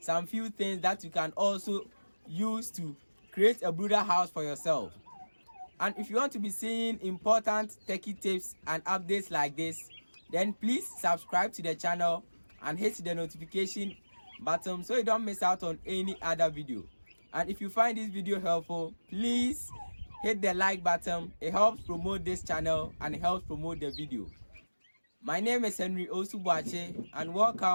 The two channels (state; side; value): inverted; both; correlation -1.00